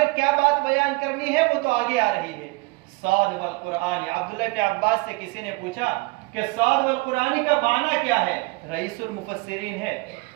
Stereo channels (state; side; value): quieter; left; 25.2 dB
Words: کیا بات بیان کرنی ہے وہ تو آگے آ رہی ہے۔ صاد والقرآن، عبداللہ بن عباس سے کسی نے پوچھا کہ صاد والقرآن کا معنی کیا ہے؟ رئیس المفسرین ہے،